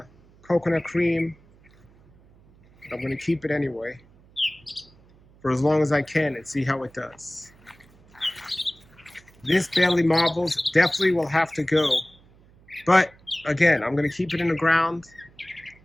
coconut cream, but I'm going to keep it anyway for as long as I can and see how it does. This Bailey Marbles definitely will have to go, but again, I'm going to keep it in the ground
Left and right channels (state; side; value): noise; right; hum, 28 dB below the sound